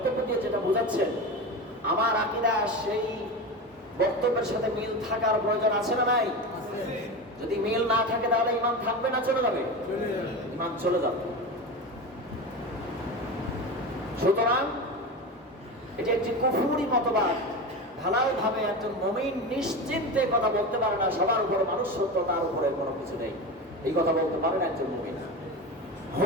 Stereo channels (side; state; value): both; normal; correlation 0.24